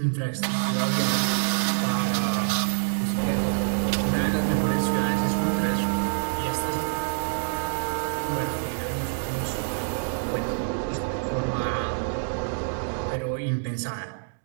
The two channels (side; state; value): left; silent; digital silence